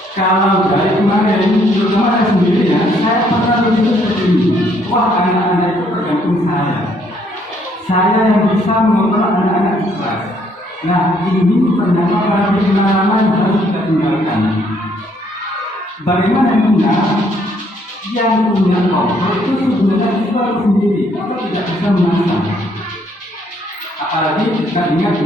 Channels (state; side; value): normal; both; correlation 0.67